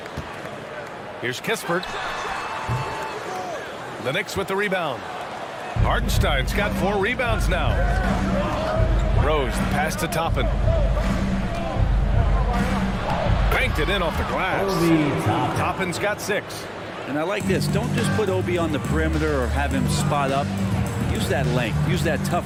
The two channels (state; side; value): identical; both; correlation 1.00